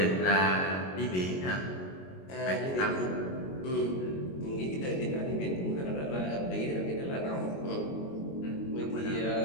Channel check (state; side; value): late; right; 22 ms